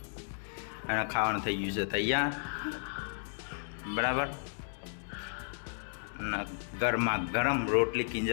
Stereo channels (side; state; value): right; silent; digital silence